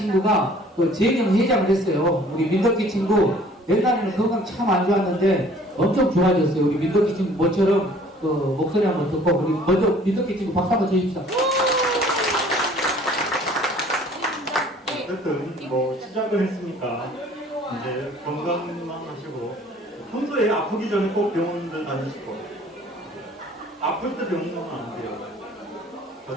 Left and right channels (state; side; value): normal; both; correlation 0.53